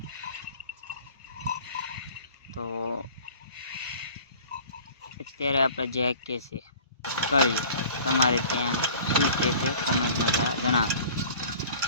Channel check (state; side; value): inverted; both; correlation -0.46